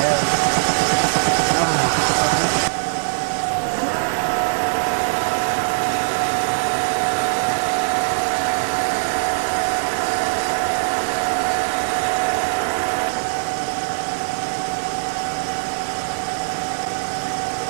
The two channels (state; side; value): silent; left; 65 dB below the other